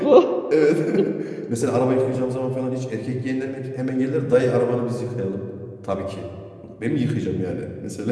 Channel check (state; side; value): identical; both; correlation 1.00